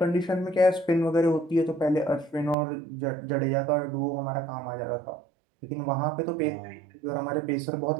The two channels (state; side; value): drops out; left; at 2.6 s